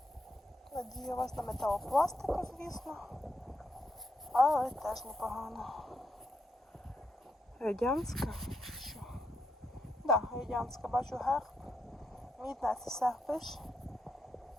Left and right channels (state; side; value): normal; both; correlation 0.81